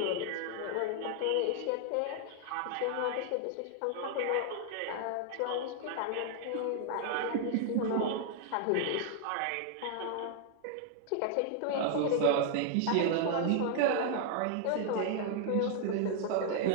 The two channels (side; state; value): both; different; correlation 0.00